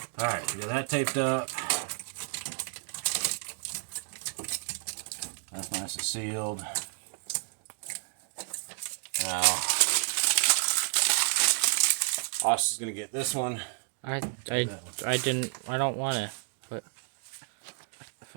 All right, we got that taped up. That's nice and sealed. Now, Austin's gonna get this one. I don't want to, but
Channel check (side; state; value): left; silent; digital silence